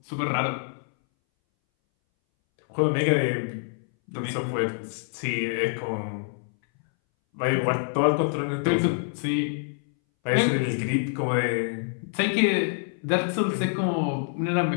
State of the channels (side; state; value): right; silent; 60 dB below the other